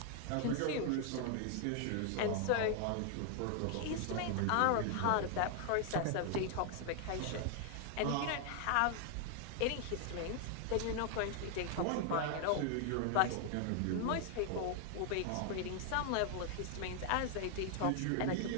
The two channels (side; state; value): both; different; correlation 0.00